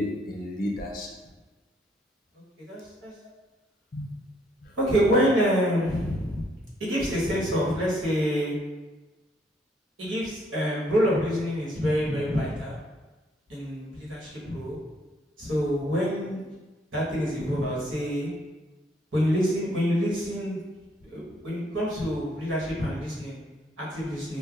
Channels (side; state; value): both; normal; correlation 0.68